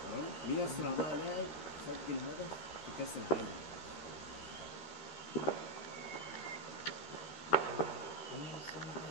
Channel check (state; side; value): late; right; 13 ms